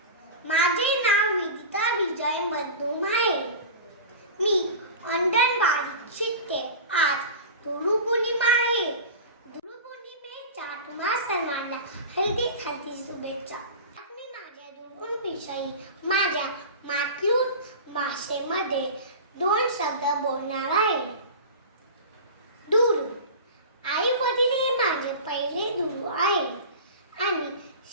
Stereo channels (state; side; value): inverted; both; correlation -0.32